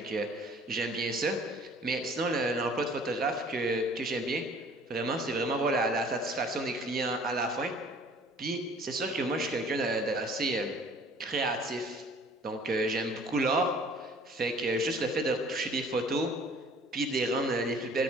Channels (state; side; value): normal; both; correlation 0.52